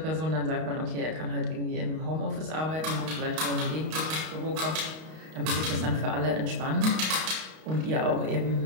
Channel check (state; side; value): late; left; 32 ms